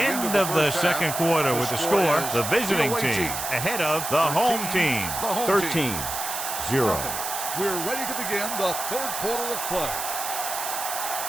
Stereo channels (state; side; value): noise; right; hiss, 5 dB below the sound